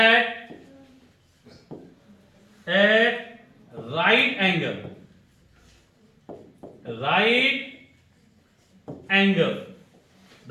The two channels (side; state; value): both; identical; correlation 1.00